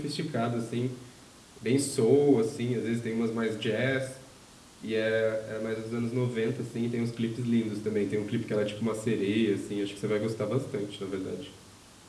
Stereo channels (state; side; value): identical; both; correlation 1.00